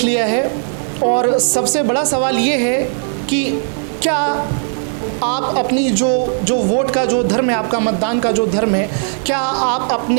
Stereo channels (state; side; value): silent; left; digital silence